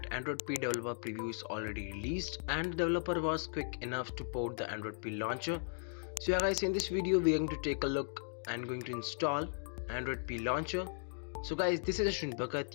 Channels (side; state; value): right; silent; digital silence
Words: Android P developer preview is already released and the developer was quick enough to port the Android P launcher. So yeah guys, in this video we are going to take a look and going to install Android P launcher. So guys, this is Ashwin